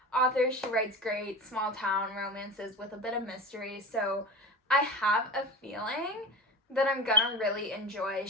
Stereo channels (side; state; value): both; normal; correlation 0.29